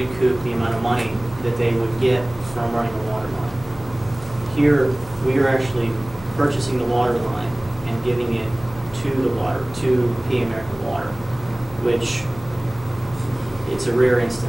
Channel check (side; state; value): left; noise; hum, 17 dB below the sound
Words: the amount of money that they would get from running a water line. Here, we are actually purchasing the water line and giving it to P American Water, which it's a rare